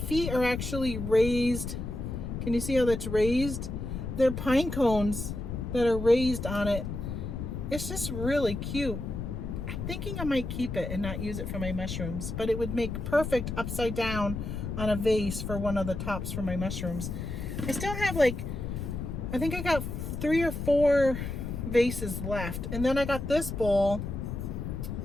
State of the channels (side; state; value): left; noise; rumble, 5 dB below the sound